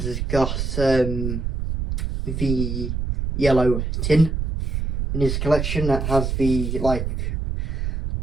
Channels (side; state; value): right; noise; rumble, 2 dB below the sound